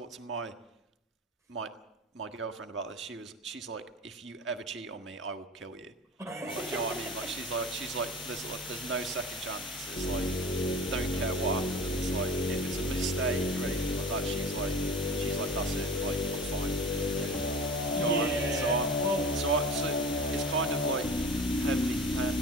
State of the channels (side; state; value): both; normal; correlation 0.37